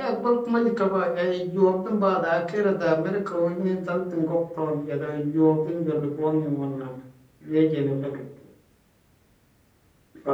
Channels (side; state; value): both; identical; correlation 1.00